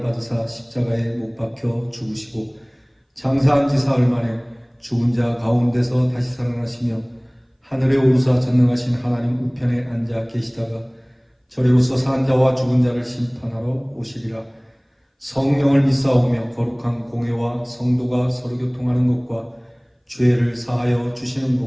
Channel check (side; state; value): both; identical; correlation 1.00